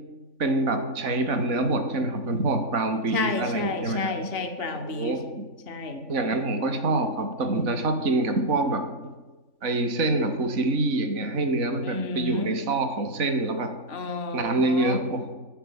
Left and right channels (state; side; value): late; left; 3.5 ms